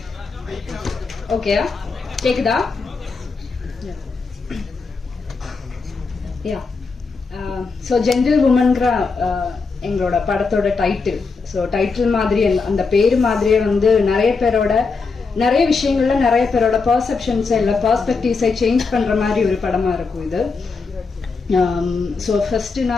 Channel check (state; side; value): quieter; right; 4.5 dB